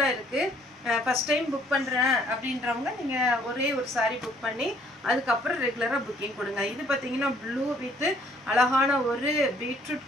இருக்கு ஃபர்ஸ்ட் டைம் புக் பண்றேன் அப்படின்றவங்க நீங்க ஒரே ஒரு saree புக் பண்ணி அதுக்கு அப்புறம் ரெகுலரா புக்கிங் கொடுங்க இது பாத்தீங்கன்னா ப்ளூ வித் அழகான ஒரு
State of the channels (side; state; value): both; normal; correlation 0.63